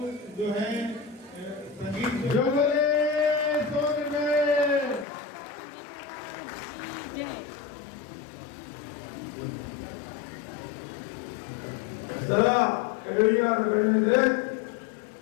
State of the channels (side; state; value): right; drops out; at 5.1 s